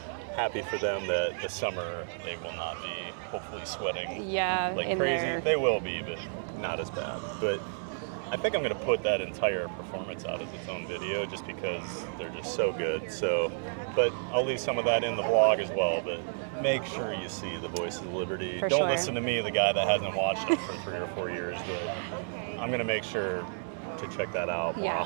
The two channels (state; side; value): silent; left; digital silence